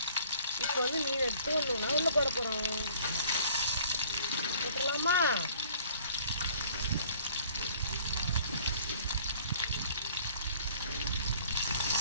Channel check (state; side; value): inverted; both; correlation -0.54